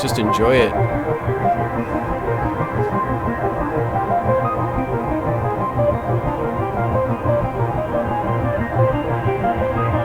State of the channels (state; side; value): identical; both; correlation 1.00